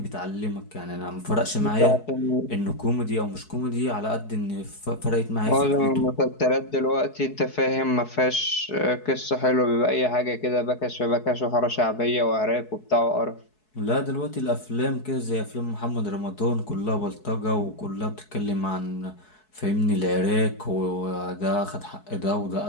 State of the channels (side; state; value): right; late; 4.7 ms